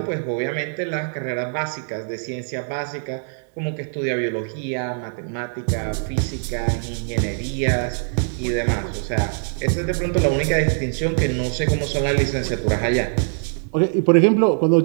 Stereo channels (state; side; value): silent; left; digital silence